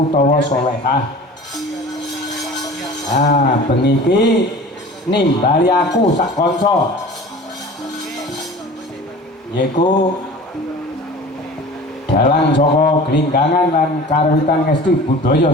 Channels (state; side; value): normal; both; correlation 0.41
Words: solehah. Bengi iki nimbali aku sak kanca yaiku dalang saka Glinggangan lan karwitan ngesti